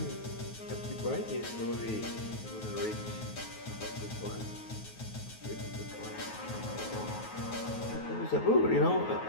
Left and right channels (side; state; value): right; late; 9.3 ms